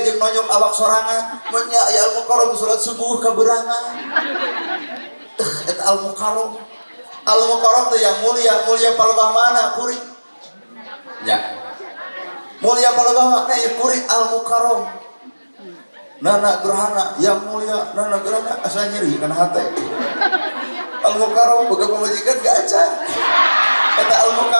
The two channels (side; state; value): both; inverted; correlation -1.00